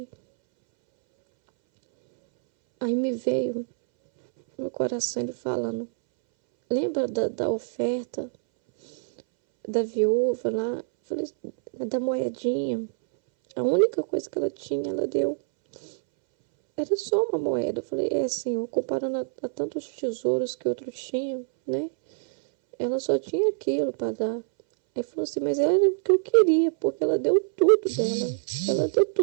aí me veio no coração ele falando, lembra da oferta da viúva lá? Eu falei, da moedinha. A única coisa que ela tinha, ela deu. Era só uma moeda. Eu falei, Senhor, comparando a tantos tesouros que outros tinham, né? Ela só tinha aquilo para dar. Aí falou assim, mas era o que eu queria, porque ela deu tudo dela. Ela deu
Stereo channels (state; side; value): silent; left; 61 dB below the other